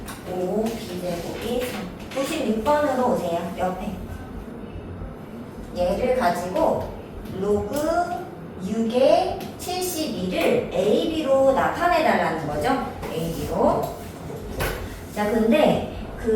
5b제곱이 3. 96번으로 오세요. 옆에. 얘를 가지고 로그 6의 72를 AB로 나타내달라는 거죠. AB로. 자, 근데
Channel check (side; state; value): both; identical; correlation 1.00